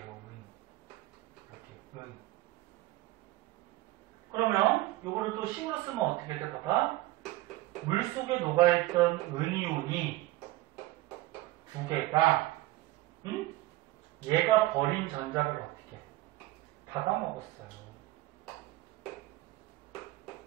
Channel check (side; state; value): left; quieter; 17.8 dB